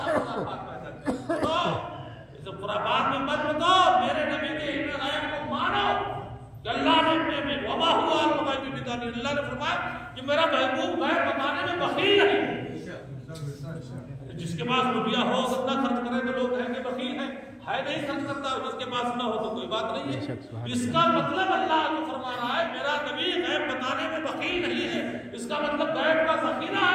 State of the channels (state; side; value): identical; both; correlation 1.00